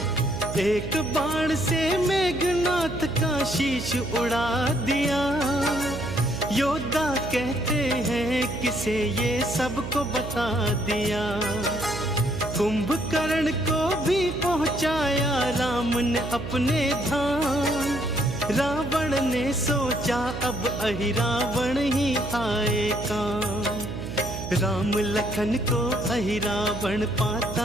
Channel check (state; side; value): noise; right; hum, 7 dB below the sound